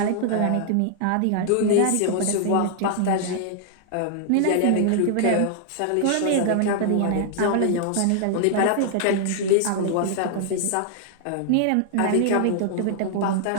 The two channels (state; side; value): different; both; correlation -0.01